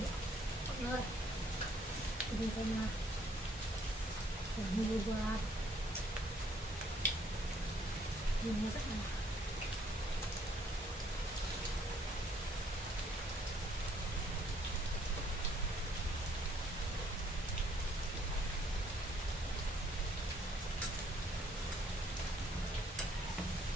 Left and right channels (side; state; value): both; normal; correlation 0.65